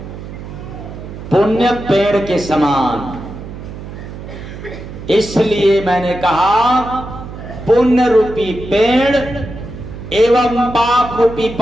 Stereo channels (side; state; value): right; noise; hum, 12 dB below the sound